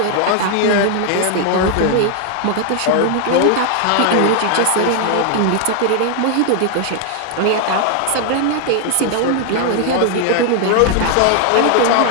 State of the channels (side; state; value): both; different; correlation 0.00